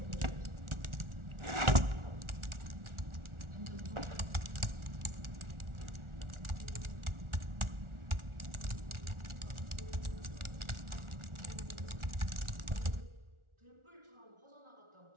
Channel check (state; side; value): late; left; 1.4 ms